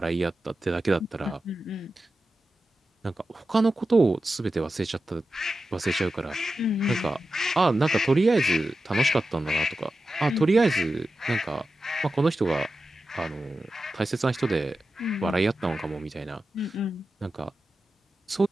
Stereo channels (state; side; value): normal; both; correlation 0.92